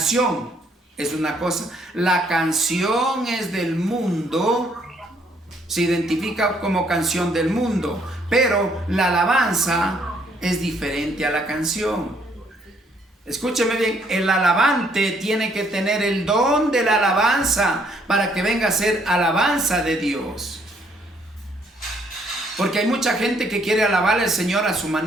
es una cosa, la canción es del mundo, se identifica como canción del mundo, pero la alabanza es diferente a la canción. Escúcheme bien, el alabante tiene que tener el don de la alabanza para que venga a ser alabanza de Dios. Porque hay mucha gente que quiere alabar al Señor a su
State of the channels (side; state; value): both; normal; correlation 0.67